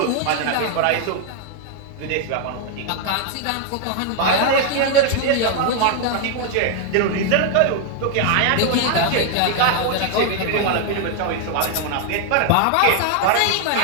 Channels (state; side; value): different; both; correlation 0.00